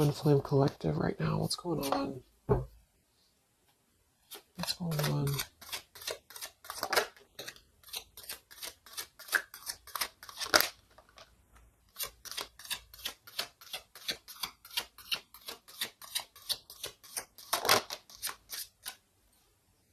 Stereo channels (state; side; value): identical; both; correlation 1.00